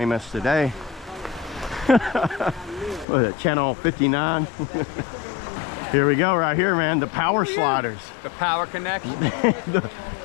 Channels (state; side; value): drops out; right; at 3.1 s